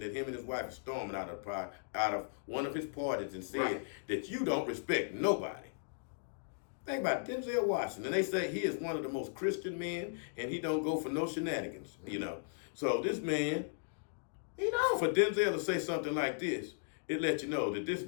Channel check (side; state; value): right; silent; digital silence